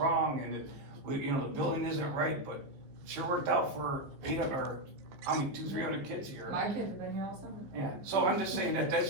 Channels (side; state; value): left; late; 15 ms